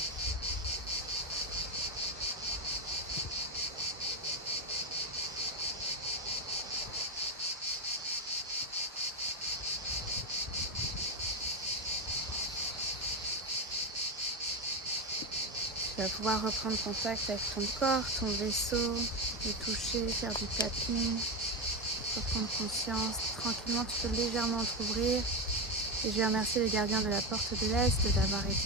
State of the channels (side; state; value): both; normal; correlation 0.13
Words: Tu vas pouvoir reprendre contact avec ton corps, ton vaisseau, le toucher, faire du tapping, reprendre conscience. Tranquillement, tu peux légèrement t'ouvrir. Et je vais remercier les gardiens de la porte de l'Est d'avoir